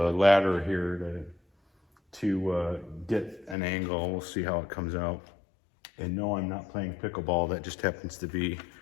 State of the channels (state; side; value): drops out; right; at 3.6 s